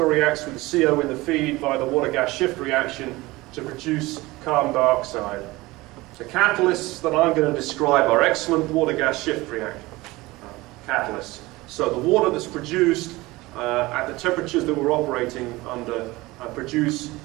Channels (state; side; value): quieter; left; 20.5 dB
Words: reacts with the CO in the feed via the water-gas shift reaction to produce carbon dioxide. The catalysts that I'm going to describe are excellent water-gas shift catalysts. So the water that's produced at the temperatures that we're operating under produce